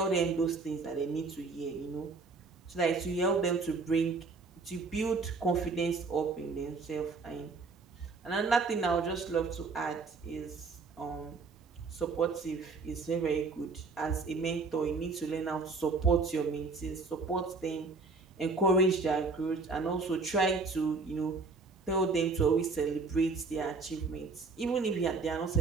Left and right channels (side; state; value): left; quieter; 4.1 dB